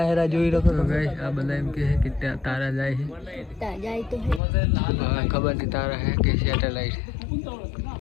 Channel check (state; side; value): drops out; right; at 4.4 s